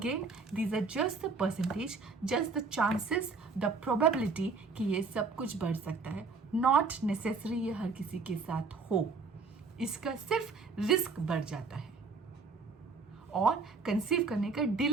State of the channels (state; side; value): quieter; left; 4.4 dB